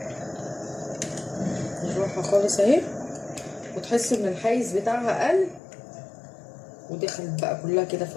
بالراحه خالص اهي، وتحس ان الحيز بتاعها قل ودخلت بقى كلها كده في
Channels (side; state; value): right; drops out; at 5.6 s